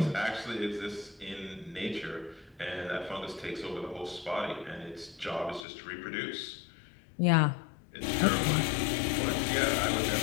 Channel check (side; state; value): right; drops out; at 5.7 s